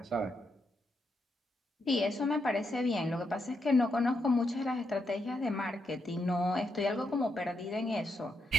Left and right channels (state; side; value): normal; both; correlation 0.82